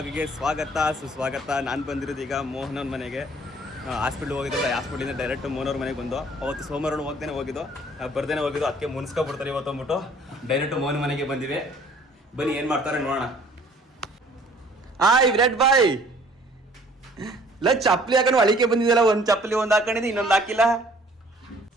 ಸ್ವಾಗತ ಸುಸ್ವಾಗತ. ನಾನು ಬಂದಿರೋದು ಈಗ ಮೋಹನ್ ಅವ್ರ ಮನೆಗೆ. ಹಾಸ್ಪಿಟ್ಲ್ ಹೋಗಿದ್ದಿಲ್ಲ, ಹಾಸ್ಪಿಟ್ಲಿಂದ ಡೈರೆಕ್ಟ್ ಮೋಹನ್ ಅವ್ರ ಮನೆಗೆ ಬಂದು. ಅವತ್ತು ಸೋಮವಾರ ಹೋಗ್ದೇನೆ ಹೋಗಿದ್ದು, ಬರ್ದೇನೆ ಹೋಗಿದ್ದು. ಅದಕ್ಕೆ ಮುನ್ಸ್ಕೊಬಿಡ್ತಾರೆ ಇವತ್ತು ಅಂದ್ಬಿಟ್ಟು ಡೈರೆಕ್ಟ್ ಮೋಹನ್ ಮನೆಗೆ ಬಂದಿವಿ. ಬನ್ನಿ ಏನು ಮಾಡ್ತಾರೆ ನೋಡೋಣ. ವಿರಾಟ್ ಬಾಯ್ ಇಲ್ಲ ಚಪ್ಪಲಿ ಹಾಕೊಂಡು ಅಳಿಕೆ ಬಂದಿದ್ದಲ್ಲ. ಒಂದು ಚಪ್ಪಲಿ ಒಂದು ಹಾಕೊಂಡಿದ್ದು, ಇನ್ನೊಂದು ಹಾಕಿಲ್ಲ.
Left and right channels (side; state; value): both; normal; correlation 0.55